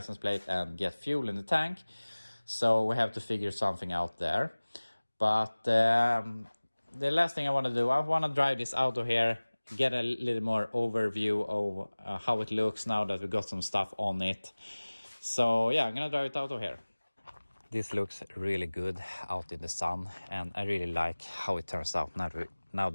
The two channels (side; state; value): both; inverted; correlation -1.00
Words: plate and get fuel in the tank. So we have to figure something out there. But the last thing I want to do, I want to drive this out of here, get a little more overview of how it looks now that we got some stuff on it. So yeah, I'm gonna drive it out of here. This looks really good out in the sun, and I really like how it turns out now